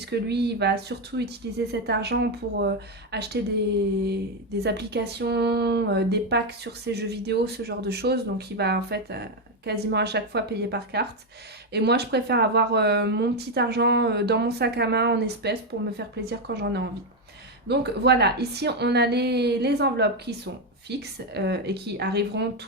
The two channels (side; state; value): both; normal; correlation 0.06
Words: lui, il va surtout utiliser cet argent pour acheter des applications, des packs sur ses jeux vidéo, ce genre de choses. Donc il va en fait quasiment à chaque fois payer par carte. Et moi, je préfère avoir mon petit argent dans mon sac à main en espèces pour me faire plaisir quand j'en ai envie. Donc voilà, ici on a les enveloppes qui sont fixes et qui arriveront